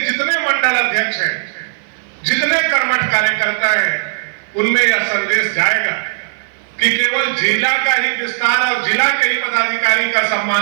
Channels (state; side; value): silent; left; 55 dB below the other